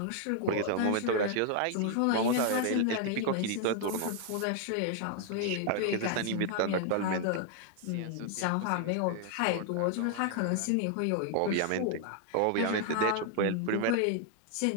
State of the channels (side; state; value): both; different; correlation 0.00